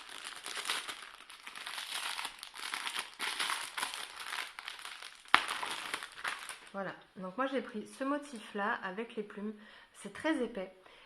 Voilà, donc moi j'ai pris ce motif là avec les plumes, c'est très épais.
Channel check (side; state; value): both; identical; correlation 1.00